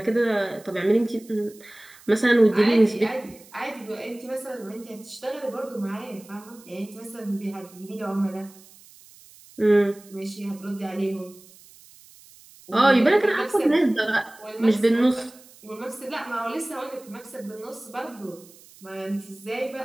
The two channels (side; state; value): right; noise; hiss, 24 dB below the sound